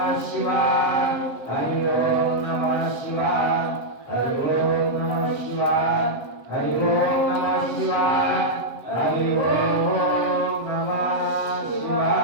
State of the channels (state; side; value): late; right; 7.4 ms